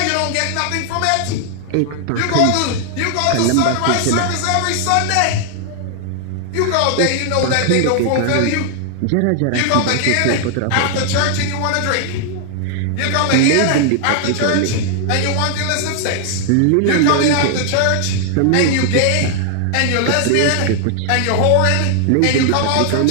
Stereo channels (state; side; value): different; both; correlation 0.00